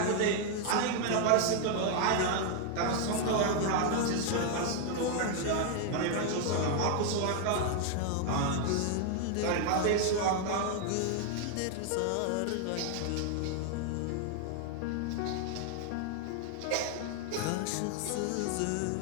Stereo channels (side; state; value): both; different; correlation 0.00